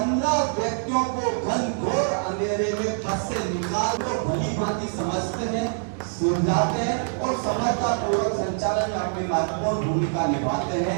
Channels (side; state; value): left; silent; 62 dB below the other